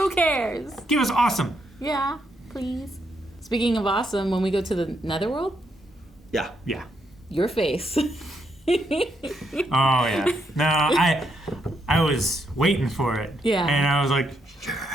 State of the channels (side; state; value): both; normal; correlation 0.78